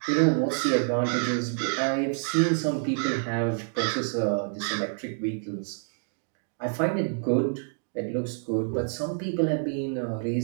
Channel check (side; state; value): left; silent; digital silence